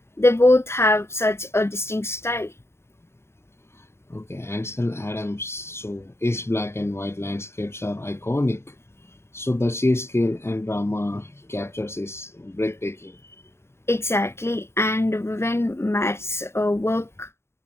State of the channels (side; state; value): right; late; 0.12 ms